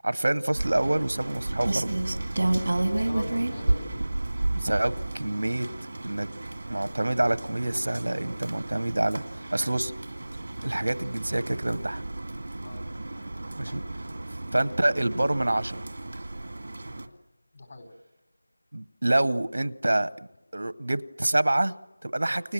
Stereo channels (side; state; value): both; inverted; correlation -0.99